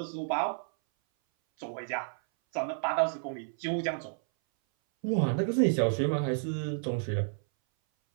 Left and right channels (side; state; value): left; silent; 57 dB below the other